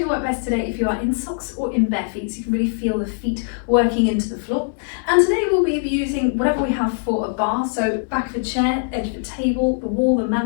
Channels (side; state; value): right; silent; digital silence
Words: work best today if you are in socks or in bare feet, so you can really feel the feet working into the floor. And today we'll be using whatever we have for a bar, so back of a chair, edge of a table, the wall, the